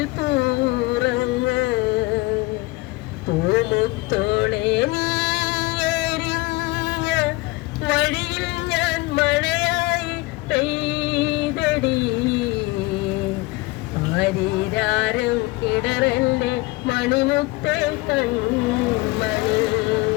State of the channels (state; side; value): quieter; right; 22.4 dB